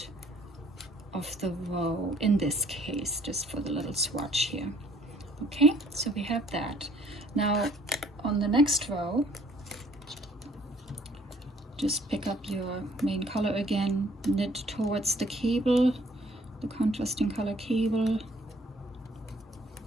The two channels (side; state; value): both; normal; correlation 0.60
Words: of the row in this case, just for the little swatch here. Okay, so we have that. Now on the next row, just pick up your main color again, knit towards the cable, the contrasting color cable.